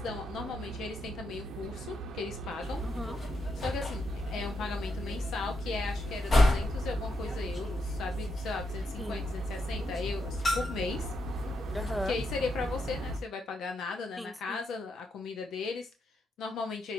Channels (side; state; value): both; normal; correlation 0.81